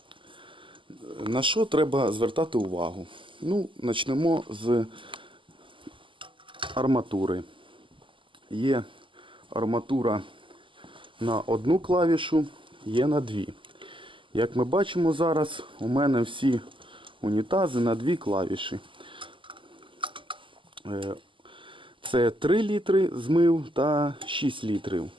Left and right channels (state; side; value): late; left; 0.25 ms